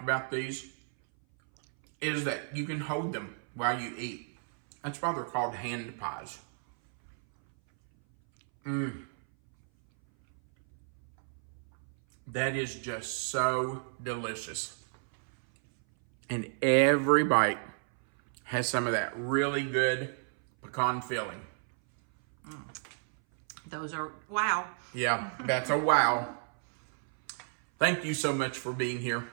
about these is that you can hold them while you eat. That's why they're called hand pies. That is just so delicious. And every bite has some of that really good pecan filling. Those are, wow. Yeah, that's a wow. Thank you so much for being here.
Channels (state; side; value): silent; left; 57 dB below the other